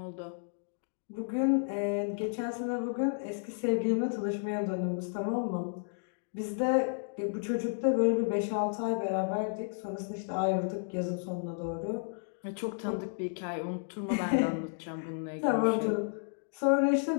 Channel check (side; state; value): right; silent; digital silence